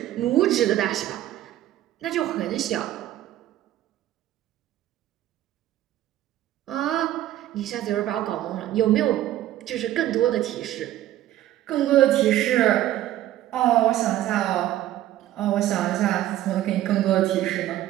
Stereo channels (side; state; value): left; quieter; 13.5 dB